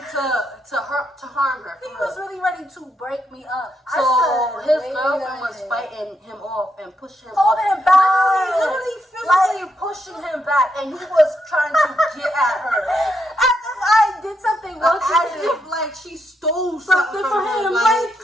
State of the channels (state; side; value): normal; both; correlation 0.80